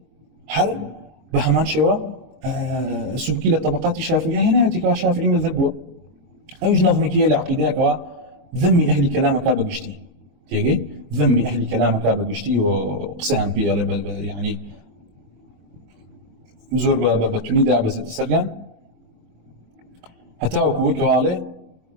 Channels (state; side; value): late; left; 23 ms